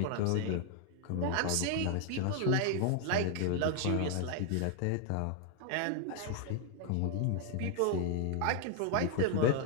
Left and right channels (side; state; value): both; different; correlation 0.00